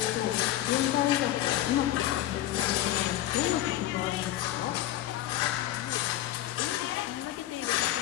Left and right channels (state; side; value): quieter; right; 13.8 dB